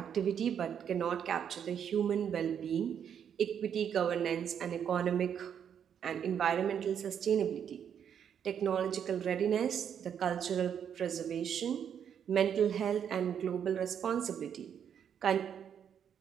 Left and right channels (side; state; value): left; quieter; 8.4 dB